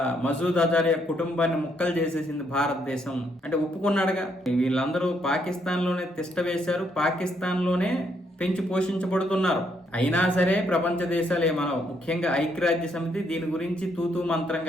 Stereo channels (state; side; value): normal; both; correlation 0.73